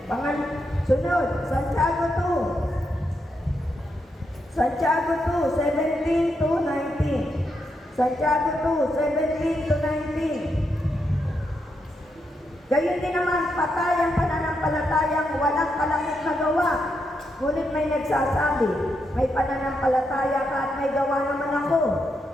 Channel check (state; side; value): normal; both; correlation 0.82